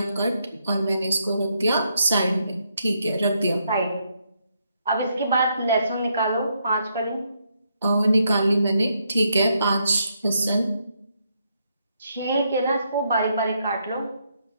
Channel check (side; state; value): both; inverted; correlation -0.77